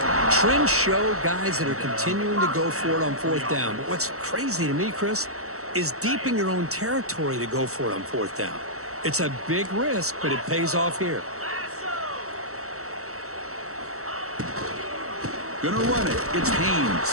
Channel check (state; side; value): late; left; 0.64 ms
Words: 42. Trends show guys that are continuing to go for it on 4th down. But what's crazy to me, Chris, is deep in your own territory to go for it on 4th down. It's a big risk, but it pays off here. Gonna run it. It's